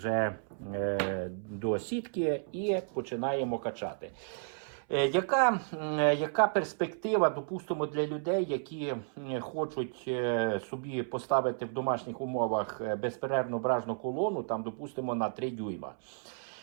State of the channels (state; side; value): silent; left; 56 dB below the other